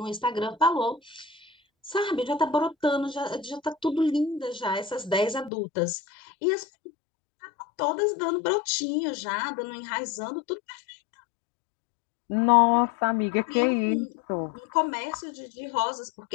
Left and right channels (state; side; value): drops out; right; at 5.5 s